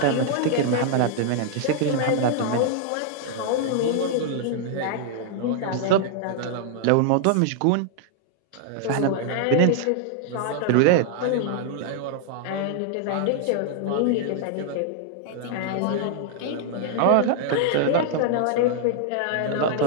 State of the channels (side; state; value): both; different; correlation 0.00